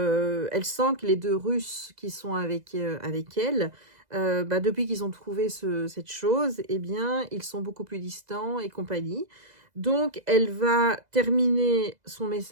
elle sent que les deux Russes qui sont avec elle, depuis qu'ils ont trouvé cette chose, eh bien, ils sont beaucoup plus distants et compagnie. Donc, elle va terminer son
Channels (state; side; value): late; left; 2.0 ms